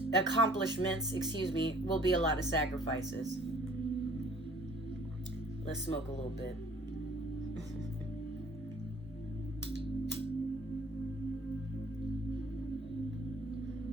will be a lot of sacrifices. Let's smoke a little bit.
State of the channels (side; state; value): both; normal; correlation 0.56